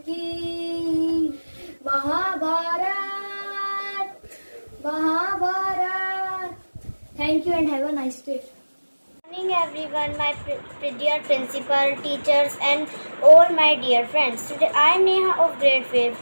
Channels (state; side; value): inverted; both; correlation -1.00